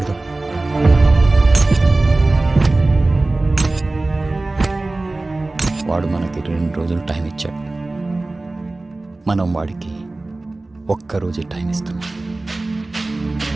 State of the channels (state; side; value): quieter; left; 3.0 dB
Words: వాడు మనకి 2 రోజులు టైం ఇచ్చాడు, మనం వాడికి 1 రోజే టైం ఇస్తున్నాం.